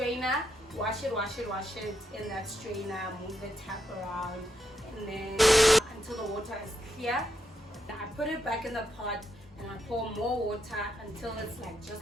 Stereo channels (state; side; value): normal; both; correlation 0.81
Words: wash it in that strainer, move the tap around, and then until the water is clear. I put it back in the pot and I pour more water until it's like just